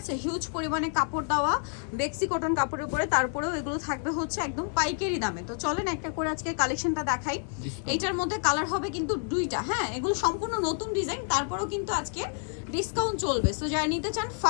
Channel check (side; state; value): right; silent; 55 dB below the other